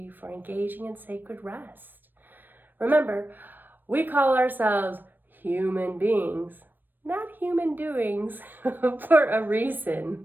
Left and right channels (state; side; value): late; left; 0.092 ms